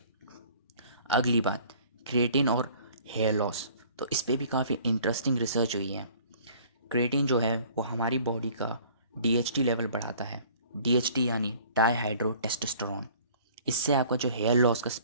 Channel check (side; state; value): both; inverted; correlation -0.52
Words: अगली बात, क्रिएटिन और हेयर लॉस। तो इस पे भी काफ़ी इंटरेस्टिंग रिसर्च हुई है। क्रिएटिन जो है वो हमारी बॉडी का डीएचटी लेवल बढ़ाता है। डीएचटी यानी डाईहाइड्रो टेस्टोस्टेरोन। इससे आपका जो हेयर लॉस का